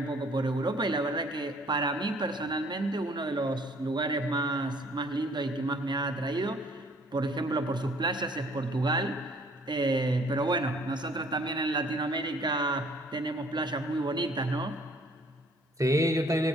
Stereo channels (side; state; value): both; normal; correlation 0.58